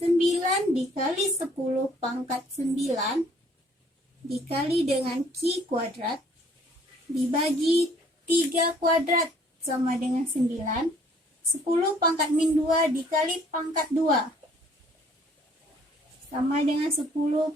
9 dikali 10 pangkat 9 dikali dengan Q kuadrat dibagi 3 kuadrat sama dengan 9. 10 pangkat min 2 dikali pangkat 2 sama dengan 10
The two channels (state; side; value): normal; both; correlation 0.60